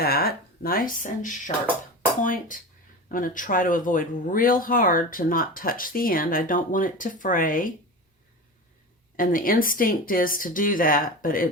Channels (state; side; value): normal; both; correlation 0.28